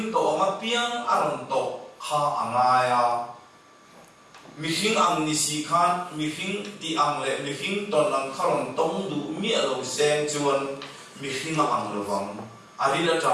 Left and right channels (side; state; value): both; identical; correlation 1.00